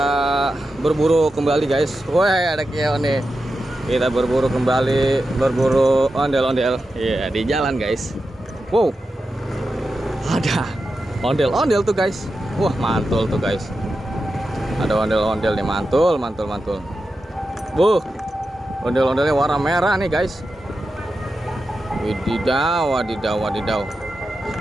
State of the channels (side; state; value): both; normal; correlation 0.90